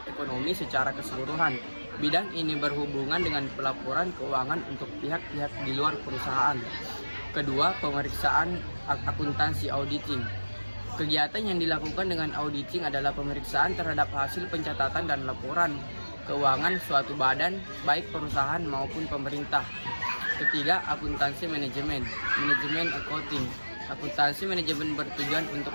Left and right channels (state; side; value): inverted; both; correlation -1.00